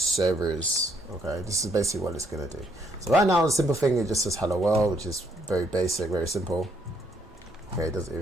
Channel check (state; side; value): normal; both; correlation 0.71